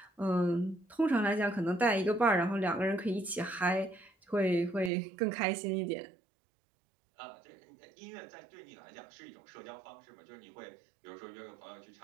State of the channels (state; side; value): drops out; left; at 4.9 s